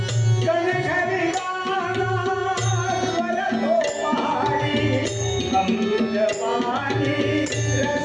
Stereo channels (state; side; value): identical; both; correlation 1.00